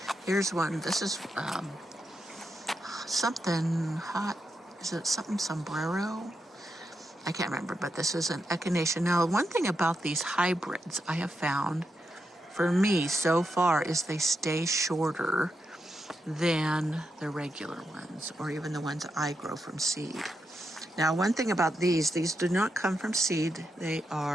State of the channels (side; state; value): both; normal; correlation 0.85